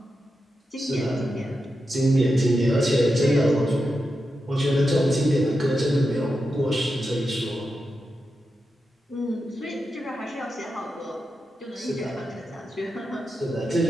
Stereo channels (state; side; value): normal; both; correlation 0.88